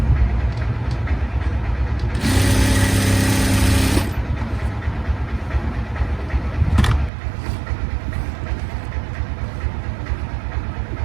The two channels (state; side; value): drops out; left; at 7.1 s